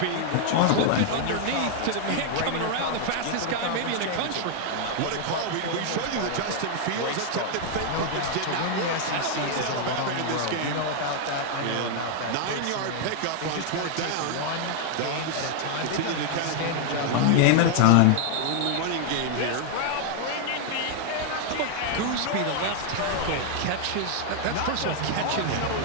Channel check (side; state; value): both; different; correlation 0.00